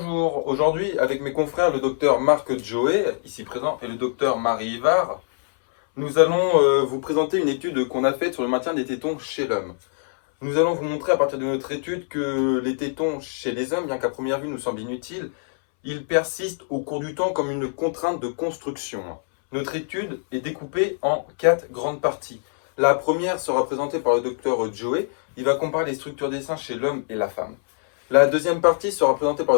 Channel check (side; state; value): right; silent; 63 dB below the other